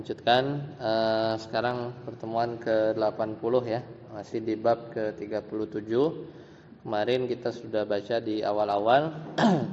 sekarang pertemuan ke-80 ya. Masih di bab ke-37. Kemarin kita sudah baca di awal-awal.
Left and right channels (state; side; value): identical; both; correlation 1.00